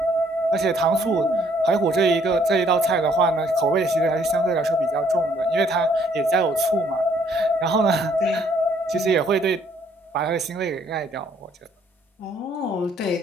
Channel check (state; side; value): normal; both; correlation 0.65